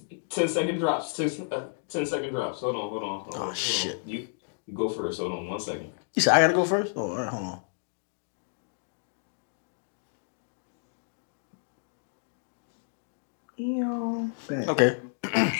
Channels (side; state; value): right; silent; digital silence